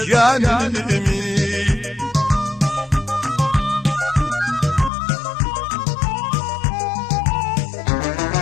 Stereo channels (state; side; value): drops out; right; at 4.9 s